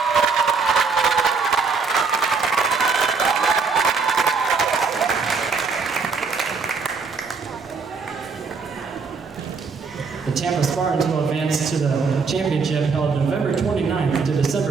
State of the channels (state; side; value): quieter; left; 4.9 dB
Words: The Tampa Spartans will advance to the championship held November 29th to December